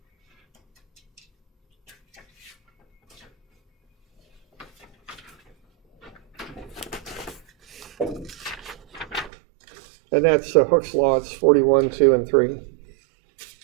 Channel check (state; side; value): drops out; left; at 9.3 s